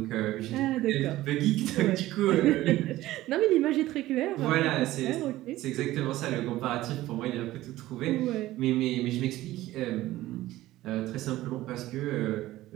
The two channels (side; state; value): left; quieter; 16.1 dB